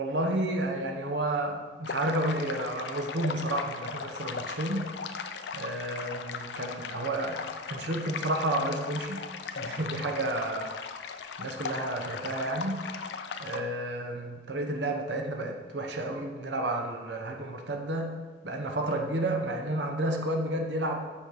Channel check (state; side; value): normal; both; correlation 0.23